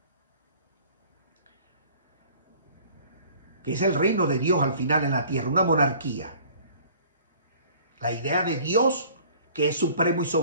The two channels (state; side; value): inverted; both; correlation -0.51